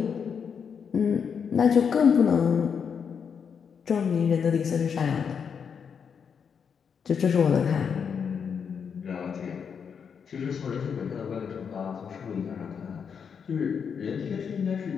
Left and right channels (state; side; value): quieter; right; 6.8 dB